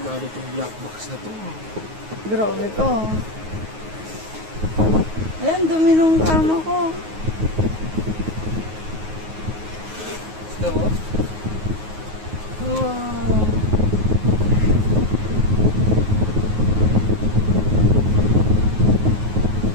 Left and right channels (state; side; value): late; left; 9.4 ms